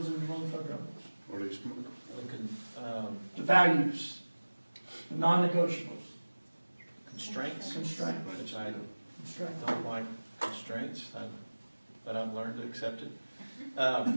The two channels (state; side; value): inverted; both; correlation -1.00